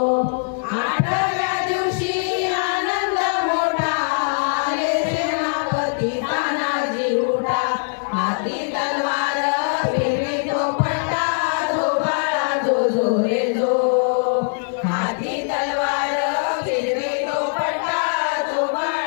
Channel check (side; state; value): right; silent; 65 dB below the other